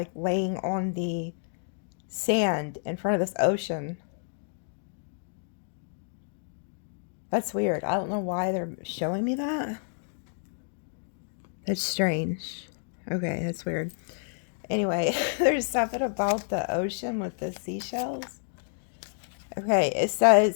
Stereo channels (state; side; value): silent; right; digital silence